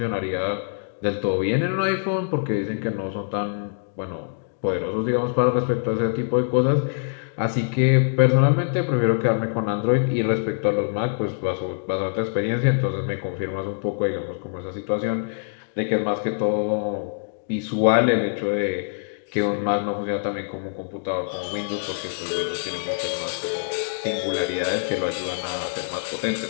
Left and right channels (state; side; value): silent; right; digital silence